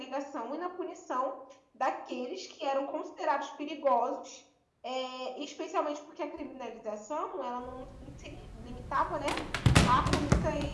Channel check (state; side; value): identical; both; correlation 1.00